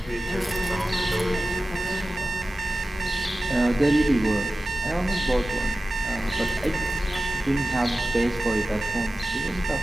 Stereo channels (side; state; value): both; normal; correlation 0.96